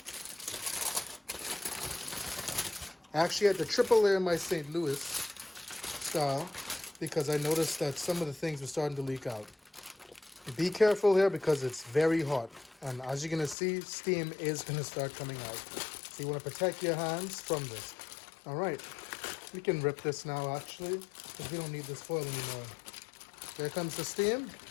I actually had to triple layer my St. Louis style because I noticed that some of the things were starting to leak out. Be careful here because it's very hot. And as you're going to see, steam is going to start coming out. So you want to protect your hands from this. All right. We can rip this now, actually, because we don't need this foil anymore. There comes the steam.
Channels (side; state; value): right; drops out; at 13.6 s